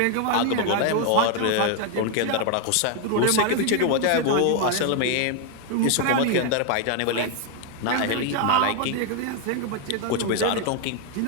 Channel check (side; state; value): both; different; correlation 0.00